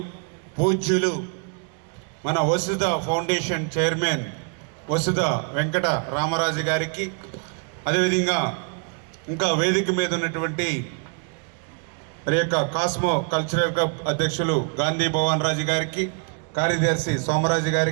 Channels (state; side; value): quieter; left; 39.4 dB